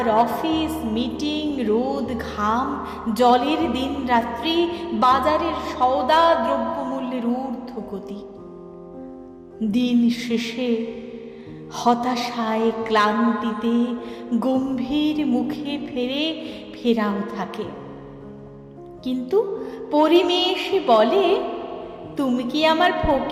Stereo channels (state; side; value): identical; both; correlation 1.00